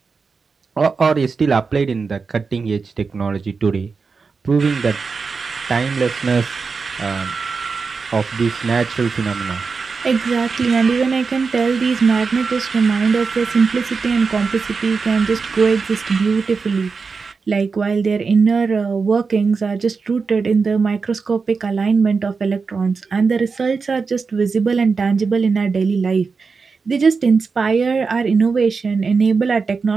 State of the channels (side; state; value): left; quieter; 4.9 dB